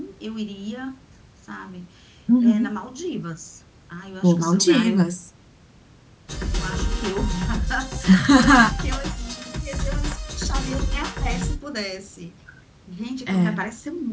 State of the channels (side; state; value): both; identical; correlation 1.00